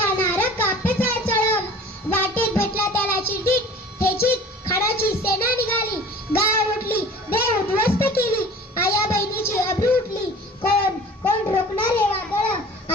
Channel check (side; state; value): both; normal; correlation 0.44